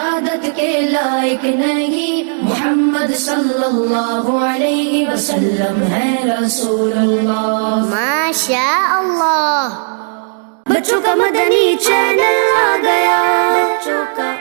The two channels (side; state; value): left; silent; 67 dB below the other